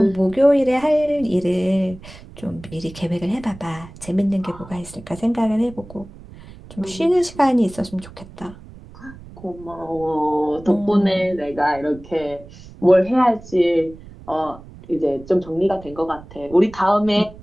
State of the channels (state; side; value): noise; right; rumble, 18 dB below the sound